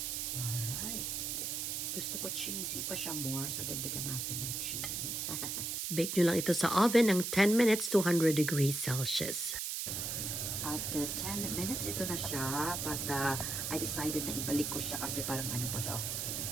Alright. Gusto ko cheesy pa siya more, so dagdagan natin ng cheese. Bake nyo lang ito sa oven ng 10 minutes, 200 degrees Celsius. After 10 minutes, ito na siya. But I decided na ibalik ko siya kasi parang ano pa siya.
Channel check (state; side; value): noise; right; hiss, 2 dB below the sound